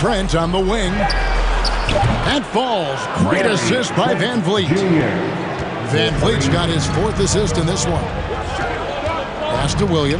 on the wing. And falls. Great assist by Van Vliet. Van Vliet's got his 4th assist in this one. Pass to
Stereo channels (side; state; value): both; identical; correlation 1.00